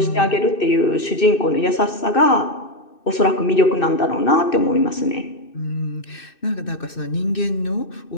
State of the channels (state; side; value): late; right; 2.6 ms